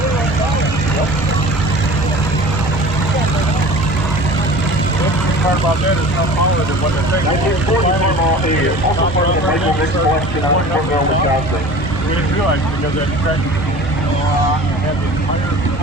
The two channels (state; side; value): normal; both; correlation 0.41